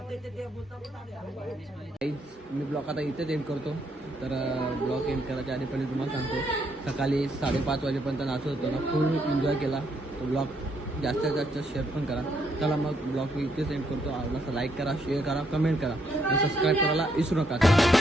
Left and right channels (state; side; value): normal; both; correlation 0.74